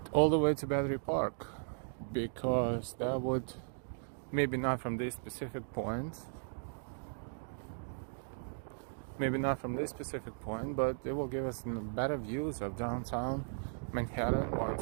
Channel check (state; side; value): silent; left; digital silence